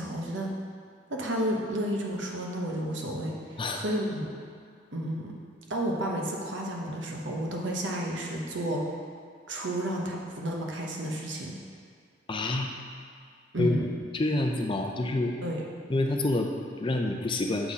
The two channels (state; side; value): normal; both; correlation 0.62